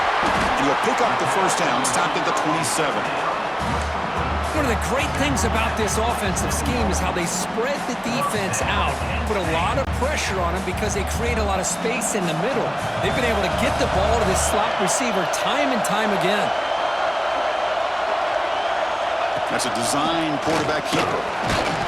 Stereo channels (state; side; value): identical; both; correlation 1.00